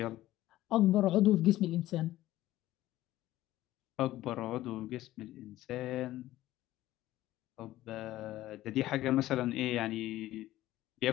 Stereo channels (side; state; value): right; quieter; 15.3 dB